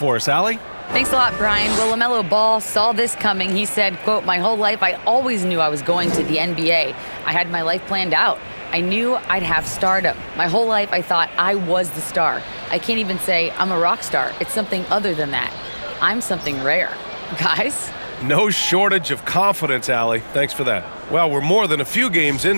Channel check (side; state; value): both; inverted; correlation -1.00